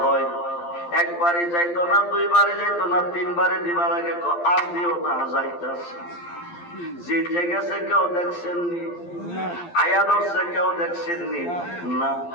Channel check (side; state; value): right; late; 12 ms